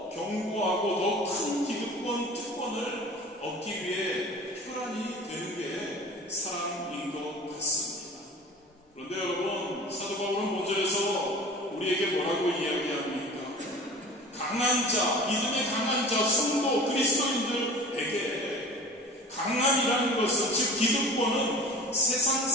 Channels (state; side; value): normal; both; correlation 0.40